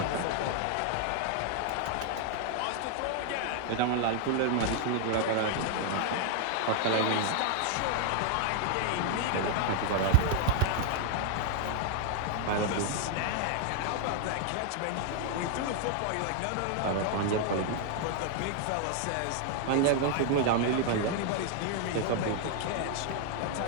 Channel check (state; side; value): different; both; correlation 0.00